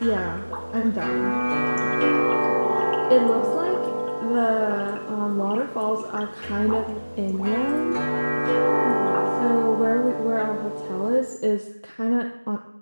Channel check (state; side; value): inverted; both; correlation -1.00